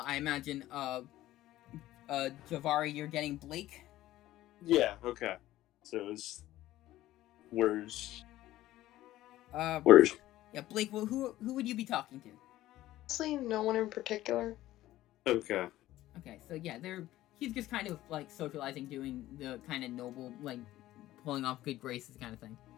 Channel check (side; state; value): right; quieter; 15.2 dB